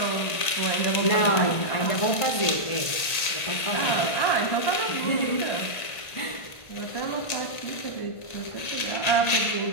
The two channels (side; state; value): right; late; 1.8 ms